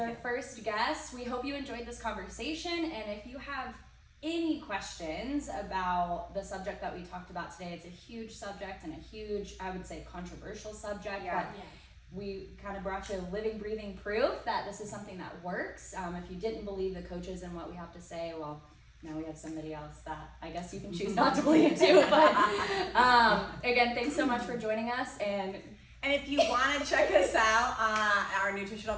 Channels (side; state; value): both; identical; correlation 1.00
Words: first guest, we hope you enjoyed this conversation, and if you have any questions about the subject that we talked about today, it's a huge subject and a huge, I would say, controversial subject, Yeah. but we kind of brought you living, breathing proof that this is something that works. If you didn't believe the coaches and what we have to say, well, now we have somebody else that I guess you can choose not to believe too. But again, thanks so much for joining us. And if you want to check us out, our